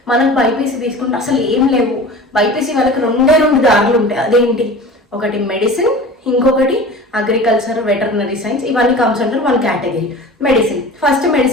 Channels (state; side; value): normal; both; correlation 0.37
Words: మనకు బైపీసీ తీసుకుంటే అసలు ఏం లేవు. బైపీసీ వాళ్ళకి 2 దారులు ఉంటాయి. అదేంటి, ఒకటి మెడిసిన్, ఇంకొకటి అగ్రికల్చర్, వెటర్నరీ సైన్స్. ఇవన్నీ కమ్స్ అంటారు 1 కేటగిరీ. మెడిసిన్, ఫస్ట్